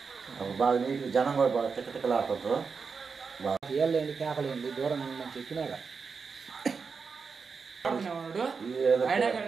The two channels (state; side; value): quieter; left; 5.3 dB